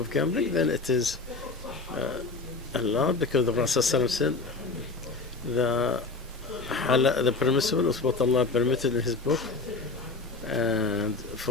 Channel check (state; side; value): quieter; right; 3.8 dB